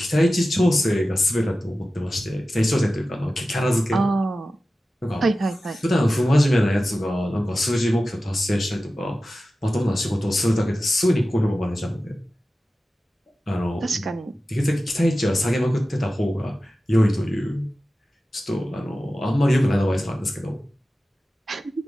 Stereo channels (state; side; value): normal; both; correlation 0.94